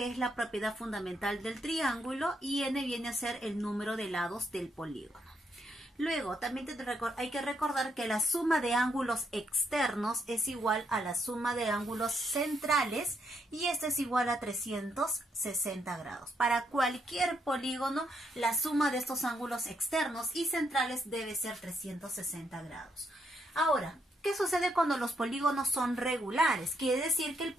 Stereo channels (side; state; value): both; normal; correlation 0.76